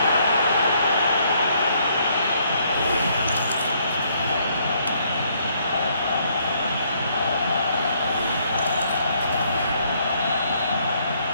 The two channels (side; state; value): both; inverted; correlation -0.69